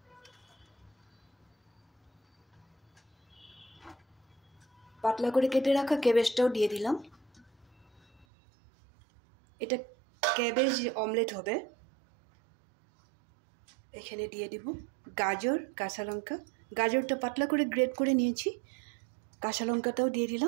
পাতলা করে কেটে রাখা ক্যাবেজটাও দিয়ে দিলাম। এটা ক্যাবেজ অমলেট হবে। এখানে দিয়ে দিব গাজর, কাঁচা লঙ্কা। গাজরটা পাতলা করে গ্রেট করে নিয়েছি। কাঁচা লঙ্কাটাও দিয়ে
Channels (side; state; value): left; drops out; at 8.2 s